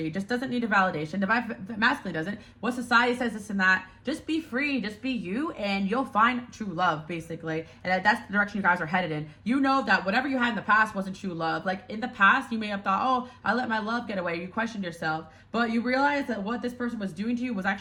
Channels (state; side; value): identical; both; correlation 1.00